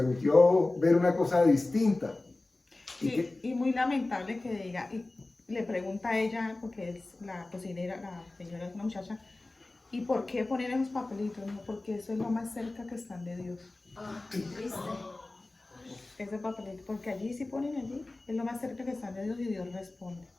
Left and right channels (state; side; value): quieter; right; 3.0 dB